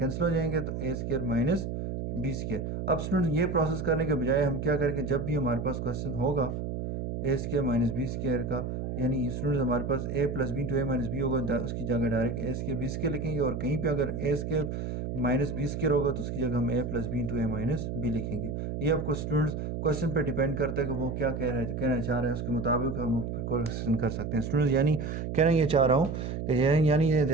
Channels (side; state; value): right; noise; hum, 4 dB below the sound